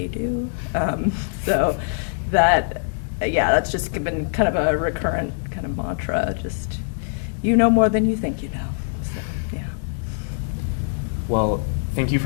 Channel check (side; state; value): right; silent; digital silence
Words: do. So that's just been kind of a recurrent kind of mantra. Just, you know more than you think you know. So, yeah. Well, thank you